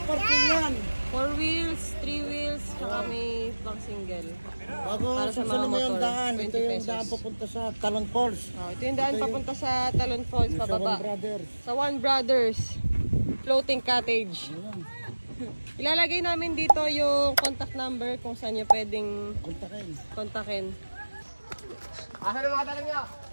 yan. 4 wheels, 3 wheels, saka may pang single. Para sa mga motor, daan. 20 ito yung pesos. daan papunta sa Talon Falls. Oh, ito yung daan papunta sa Talon Falls, pababa. Sa One Brothers. Sa One Brothers Floating Cottage. Ilalagay namin dito yung contact number kung saan nyo pwedeng kontakin. Asan ang mga tanong nyo?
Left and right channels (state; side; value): inverted; both; correlation -1.00